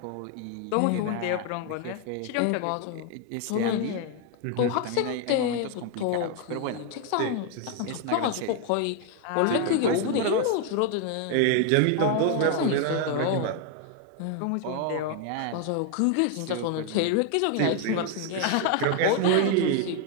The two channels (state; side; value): different; both; correlation 0.00